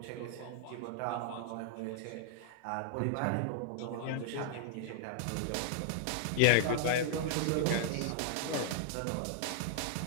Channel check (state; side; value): different; both; correlation -0.01